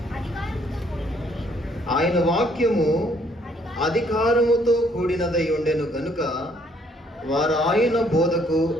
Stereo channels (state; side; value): normal; both; correlation 0.66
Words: ఆయన వాక్యము అధికారముతో కూడినదై ఉండెను గనుక వారు ఆయన బోధకు